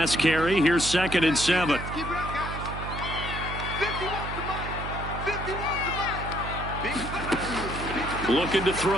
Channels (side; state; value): right; noise; hum, 7 dB below the sound